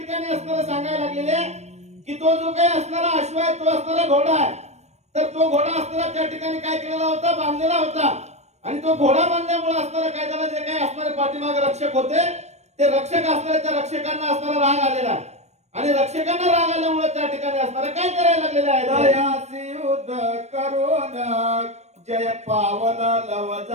असणारं सांगायला लागलेले की तो जो काही असणारा अश्व आहे तो असणारा घोडा आहे तर तो घोडा असणारा त्या ठिकाणी काय केलेला होता बांधलेला होता आणि तो घोडा बांधल्यामुळे असणारा काय झालं जे काही असणारे पाठीमागे रक्षक होते ते रक्षक असणारे त्या रक्षकांना असणारा राग आलेला आहे आणि रक्षकांना राग आल्यामुळे त्या ठिकाणी असणारा काय करायला लागलेलं आहे दयासी युद्ध करून जय पावला लव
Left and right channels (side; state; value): left; late; 0.32 ms